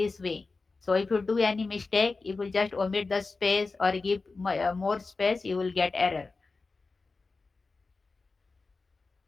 way. So if you do any mistake, if you just omit the space or give more space, you will get error.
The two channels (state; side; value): quieter; right; 3.9 dB